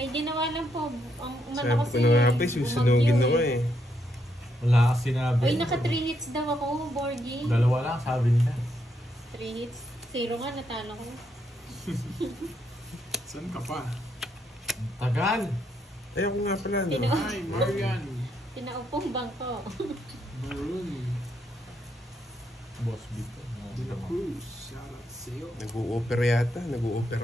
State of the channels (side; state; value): both; normal; correlation 0.77